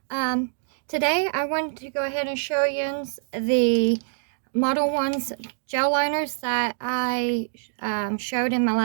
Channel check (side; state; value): left; silent; digital silence